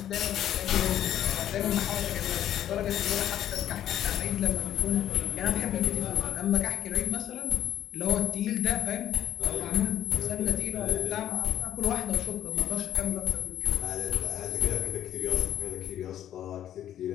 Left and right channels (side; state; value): right; quieter; 11.3 dB